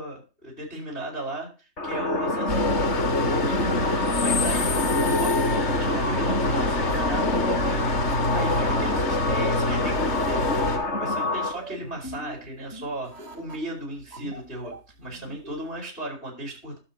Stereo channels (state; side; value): late; right; 3.3 ms